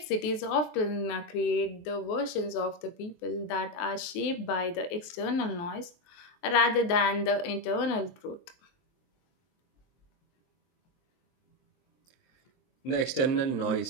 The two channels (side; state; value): right; late; 23 ms